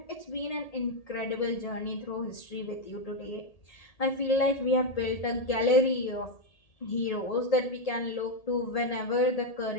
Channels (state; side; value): late; right; 1.8 ms